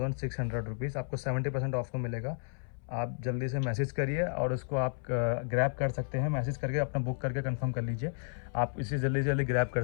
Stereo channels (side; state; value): right; silent; 56 dB below the other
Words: रुपीज़। आपको 70% ऑफ में मिलेगा। आप जल्दी से मैसेज करिए और उसको आप ग्रैब कर सकते हैं। मैसेज करके अपना बुक करके कंफर्म कर लीजिए, आप इसे जल्दी से जल्दी ग्रैब कर